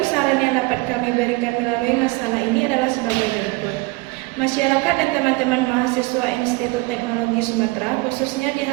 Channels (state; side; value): quieter; left; 23.8 dB